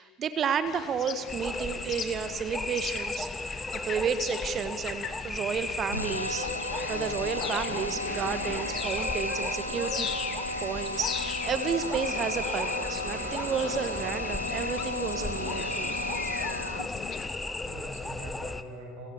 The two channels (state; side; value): normal; both; correlation 0.43